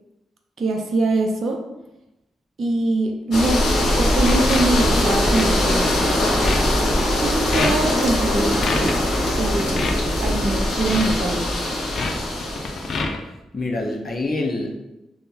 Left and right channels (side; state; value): both; normal; correlation 0.81